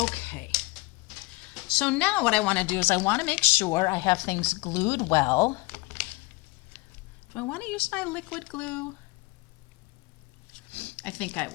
Okay. So now what I want to do is I want to make sure I have things glued well. Do I want to use my liquid glue? I think I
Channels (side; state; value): right; quieter; 24.1 dB